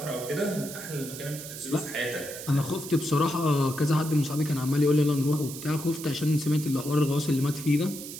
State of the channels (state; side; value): noise; right; hiss, 11 dB below the sound